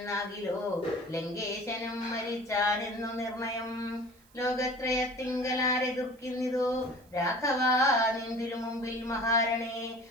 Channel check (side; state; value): right; noise; hiss, 30 dB below the sound